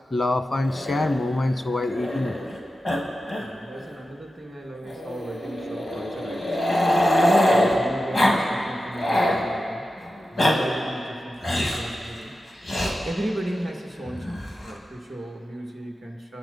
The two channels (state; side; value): normal; both; correlation 0.92